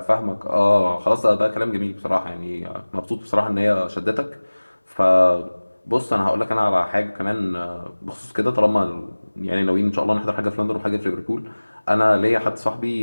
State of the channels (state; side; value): inverted; both; correlation -1.00